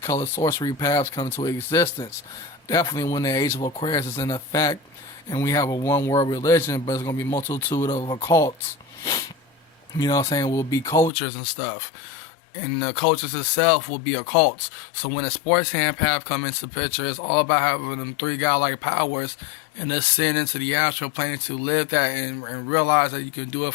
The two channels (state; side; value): drops out; right; at 11.1 s